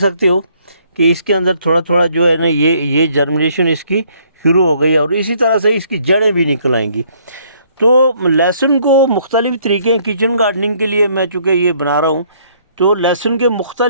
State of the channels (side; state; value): both; inverted; correlation -0.64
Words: हो कि इसके अंदर थोड़ा थोड़ा जो है ना, ये जर्मिनेशन इसकी शुरू हो गई है और इसी तरह से इसकी जड़ें भी निकल आएंगी। तो लहसुन को मुख्तलिफ़ तरीके हैं किचन गार्डनिंग के लिए। मैं चूँकि ये बना रहा हूँ, तो लहसुन के